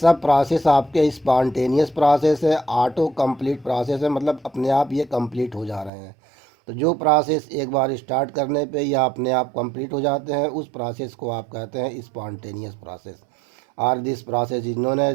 प्रोसेस आपके स्पॉन्टेनियस प्रोसेस है, ऑटो कंप्लीट प्रोसेस है, मतलब अपने आप ये कंप्लीट हो जा रहे हैं। तो जो प्रोसेस एक बार स्टार्ट करने पे या अपने आप कंप्लीट हो जाते हैं उस प्रोसेस को आप कहते हैं स्पॉन्टेनियस प्रोसेस, और this process is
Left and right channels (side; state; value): left; drops out; at 5.9 s